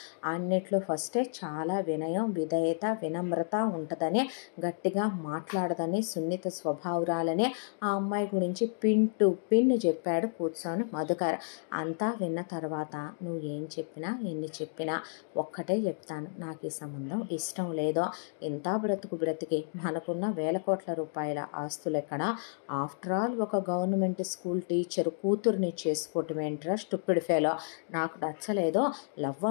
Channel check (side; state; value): right; silent; digital silence